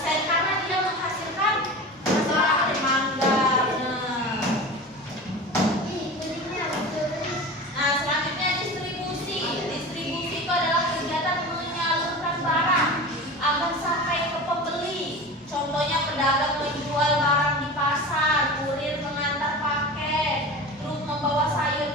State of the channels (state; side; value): normal; both; correlation 0.32